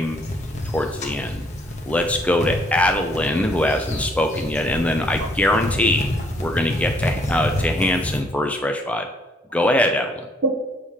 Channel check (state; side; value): normal; both; correlation 0.66